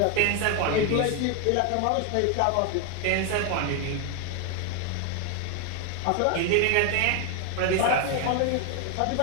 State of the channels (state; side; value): different; both; correlation 0.01